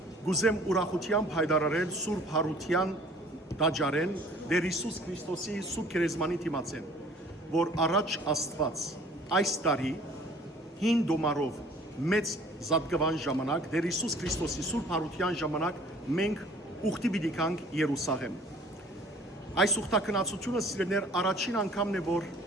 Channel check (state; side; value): normal; both; correlation 0.52